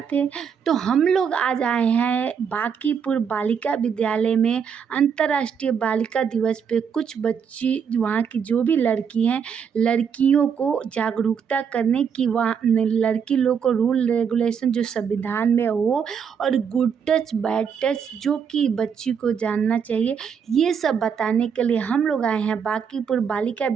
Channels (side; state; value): left; quieter; 7.0 dB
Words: थे। तो हम लोग आज आए हैं बांकीपुर बालिका विद्यालय में अंतर्राष्ट्रीय बालिका दिवस पे कुछ बच्ची वहाँ की जो भी लड़की हैं, लड़कियों को जागरूकता करने की, वहाँ लड़की लोग को रूल रेगुलेशन जो संविधान में हो और गुड टच बैड टच जो कि बच्ची को जानना चाहिए, ये सब बताने के लिए हम लोग आए हैं बांकीपुर बालिका